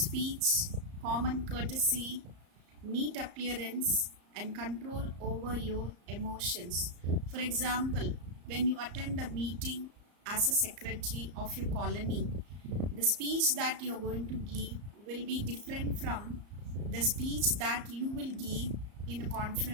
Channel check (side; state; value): left; late; 34 ms